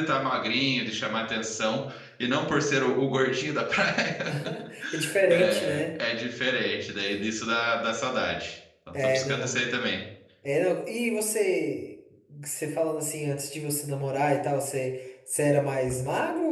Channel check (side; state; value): both; identical; correlation 1.00